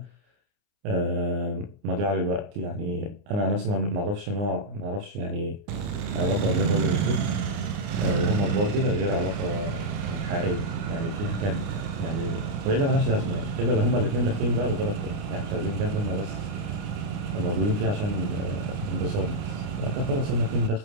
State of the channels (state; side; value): late; left; 29 ms